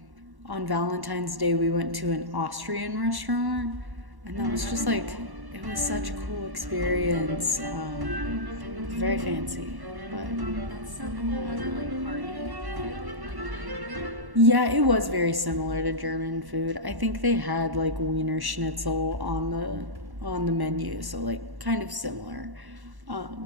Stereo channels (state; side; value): late; left; 1.1 ms